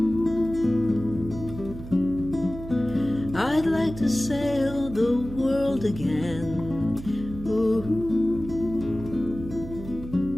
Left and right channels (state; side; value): noise; right; hum, 12 dB below the sound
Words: I'd like to sail the world again. Ooh.